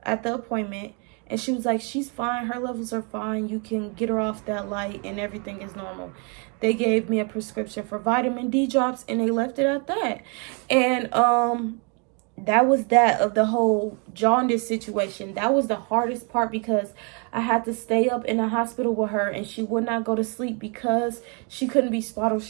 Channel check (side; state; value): left; quieter; 35.1 dB